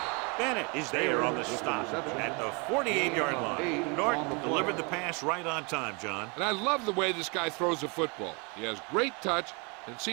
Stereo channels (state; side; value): quieter; left; 31.6 dB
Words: Bennett is there on the stop at the 48-yard line. Norton delivered the pass right on time, John. And I love the way this guy throws the football. He has great touch and